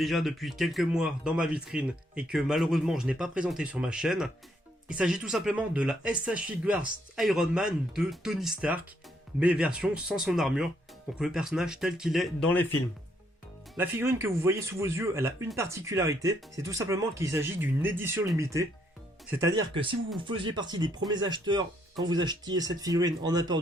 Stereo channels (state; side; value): normal; both; correlation 0.72